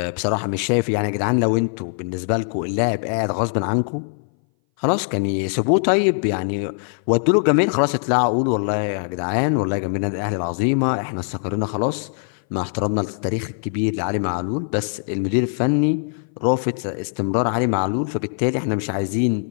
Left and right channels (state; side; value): silent; right; 60 dB below the other